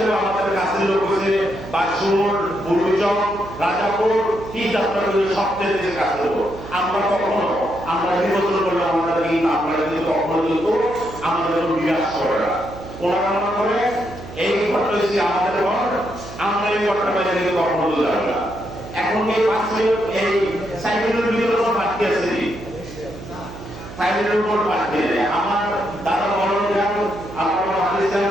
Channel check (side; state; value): right; noise; hum, 14 dB below the sound